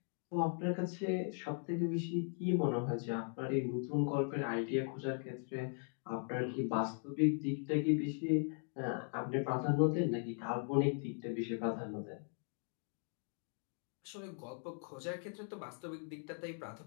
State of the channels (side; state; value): right; silent; 52 dB below the other